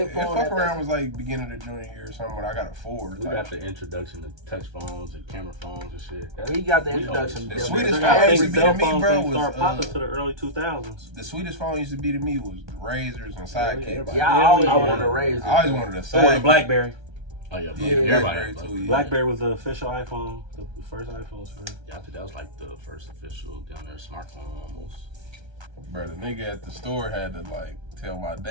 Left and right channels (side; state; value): left; late; 1.3 ms